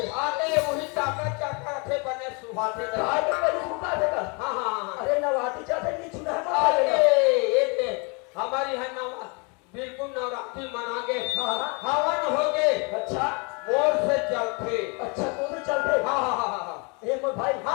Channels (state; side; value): quieter; right; 32.4 dB